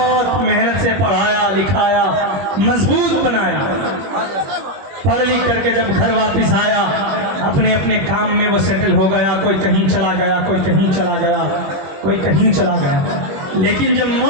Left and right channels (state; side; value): late; left; 21 ms